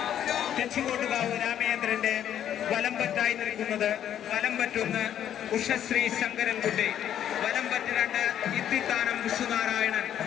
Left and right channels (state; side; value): quieter; right; 10.3 dB